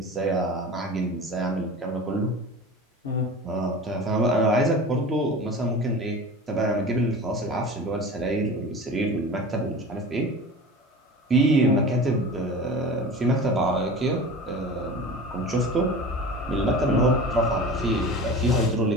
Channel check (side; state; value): both; normal; correlation 0.35